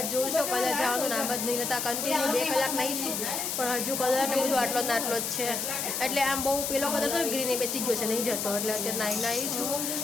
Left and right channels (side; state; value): left; noise; hiss, 2 dB below the sound